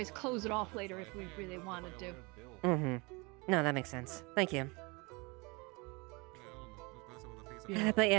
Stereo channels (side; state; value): left; quieter; 27.3 dB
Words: close it off later if we really wanted to. Mm-hmm. No, that makes sense. Thank you. But